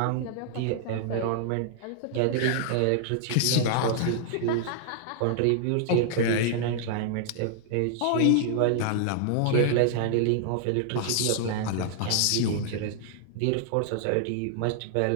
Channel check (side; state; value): both; different; correlation -0.01